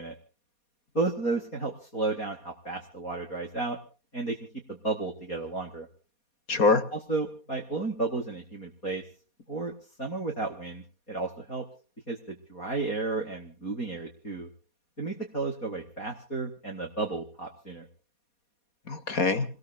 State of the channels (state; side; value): late; right; 4.2 ms